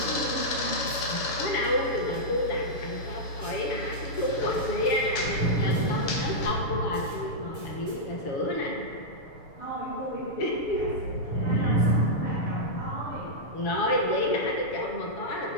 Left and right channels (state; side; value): late; right; 7.0 ms